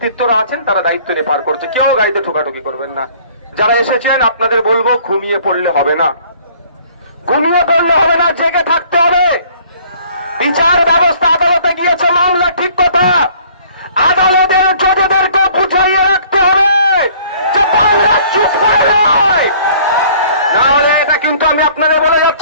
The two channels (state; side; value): inverted; both; correlation -0.55